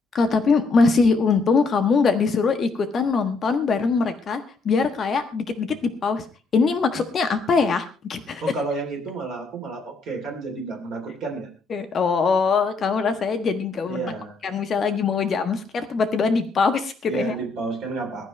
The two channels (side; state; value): right; quieter; 4.0 dB